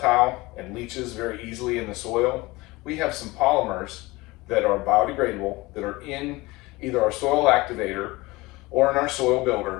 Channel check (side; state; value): right; quieter; 21.7 dB